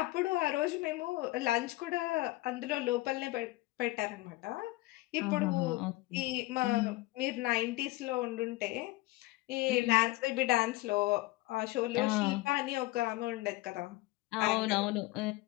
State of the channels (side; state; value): right; quieter; 19.7 dB